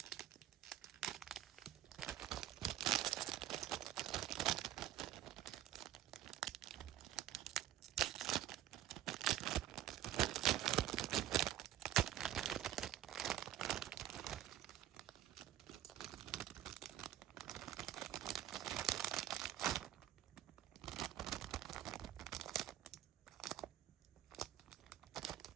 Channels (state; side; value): quieter; left; 12.3 dB